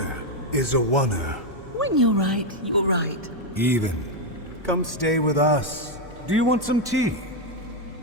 Is a wanna. When you're right, you're right. Even. Come stay with us. Do you want some tea?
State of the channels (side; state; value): both; normal; correlation 0.03